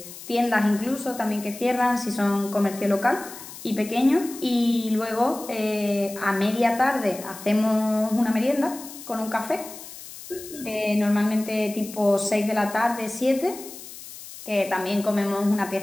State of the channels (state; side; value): noise; left; hiss, 14 dB below the sound